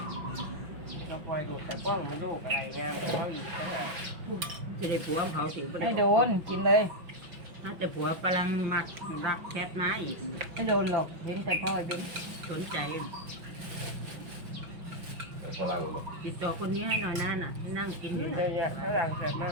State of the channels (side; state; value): left; late; 5.8 ms